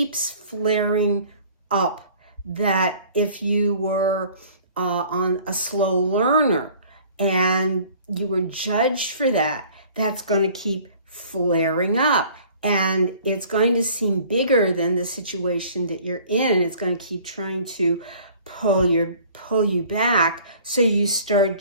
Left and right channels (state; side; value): inverted; both; correlation -0.51